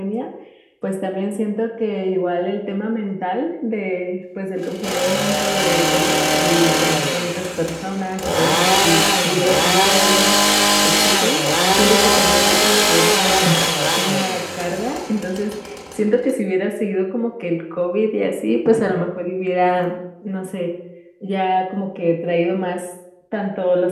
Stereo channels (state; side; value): identical; both; correlation 1.00